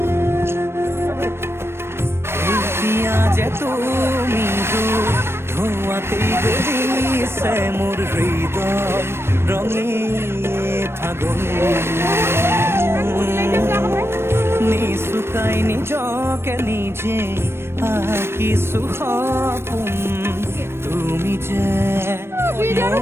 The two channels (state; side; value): late; left; 0.12 ms